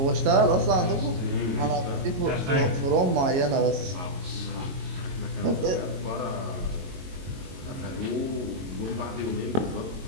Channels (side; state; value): left; late; 22 ms